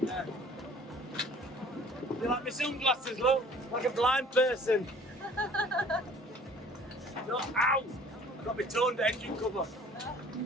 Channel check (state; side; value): normal; both; correlation 0.51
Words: Yeah. You like my sunglasses, look? Like a blind person. No, ow! I've got my toned engine cover.